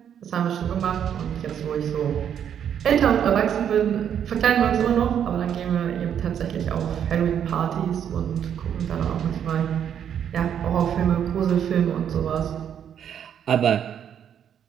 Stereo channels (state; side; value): quieter; left; 8.9 dB